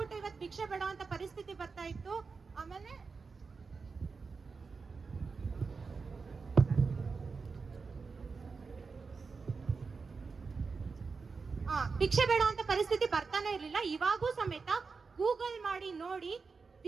ಇವತ್ತು ಭಿಕ್ಷೆ ಬೇಡೋಂತ ಪರಿಸ್ಥಿತಿ ಬರ್ತಾ ಇತ್ತು. ಆಮೇಲೆ ಭಿಕ್ಷೆ ಬೇಡ ಅಂತ ಪರಿಸ್ಥಿತಿ ಬರ್ತಾನೆ ಇರ್ಲಿಲ್ಲ. ಇವಾಗೂ ಸಮೇತ ಗೂಗಲ್ ಮಾಡಿ ನೋಡಿ,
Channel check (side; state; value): left; quieter; 4.7 dB